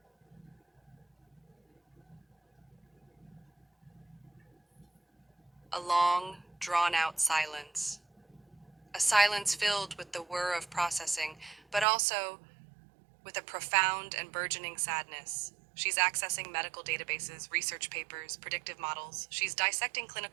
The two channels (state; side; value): drops out; left; at 11.9 s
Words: A long, drawn-out silence. A silence filled with the whir of processing, but also with a profound and burgeoning sadness. She's accessing medical databases, research papers, predictive models. She's dissecting